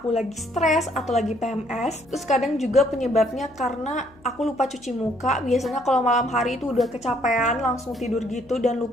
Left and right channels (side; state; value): left; noise; hum, 27 dB below the sound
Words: lagi stres atau lagi PMS. Terus kadang juga penyebabnya karena aku lupa cuci muka. Biasanya kalau malam hari itu udah kecapean, langsung tidur gitu dan